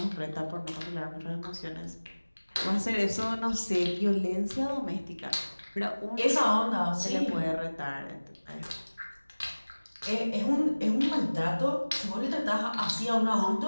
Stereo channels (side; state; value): both; inverted; correlation -1.00